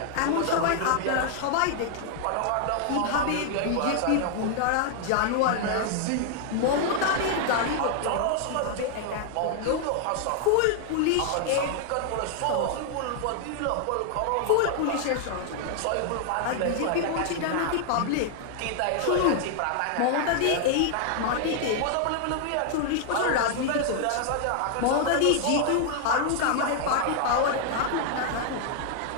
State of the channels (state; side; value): different; both; correlation 0.00